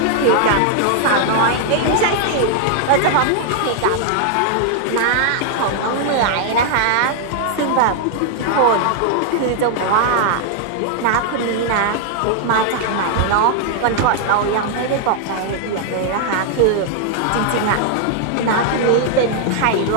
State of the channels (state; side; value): different; both; correlation 0.00